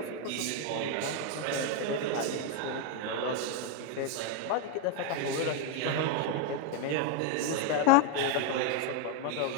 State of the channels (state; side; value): different; both; correlation 0.01